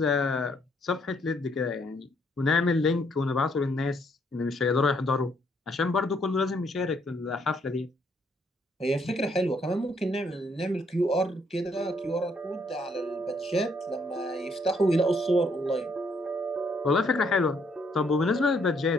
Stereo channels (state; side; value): normal; both; correlation 0.70